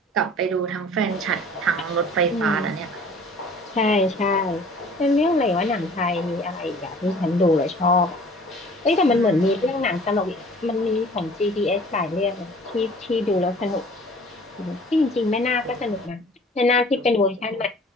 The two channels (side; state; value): both; normal; correlation 0.49